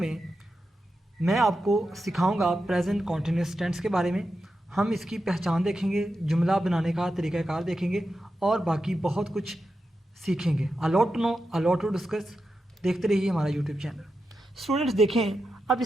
मैं आपको सिखाऊंगा प्रेजेंट कॉन्टिन्यूस टेंस के बारे में। हम इसकी पहचान देखेंगे, जुमला बनाने का तरीक़ाकार देखेंगे और बाकी बहुत कुछ सीखेंगे। A lot to know, a lot to discuss. देखते रहिए हमारा यूट्यूब चैनल। स्टूडेंट्स देखें अब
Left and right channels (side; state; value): both; normal; correlation 0.89